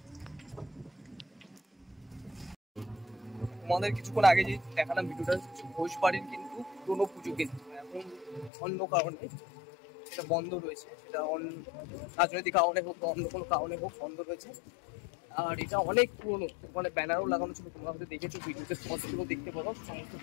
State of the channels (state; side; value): drops out; right; at 8.5 s